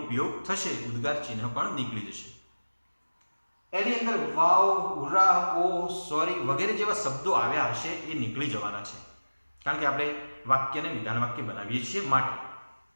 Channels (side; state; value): both; inverted; correlation -1.00